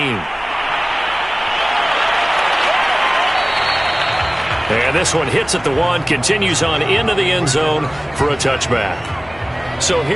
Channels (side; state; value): left; noise; hum, 24 dB below the sound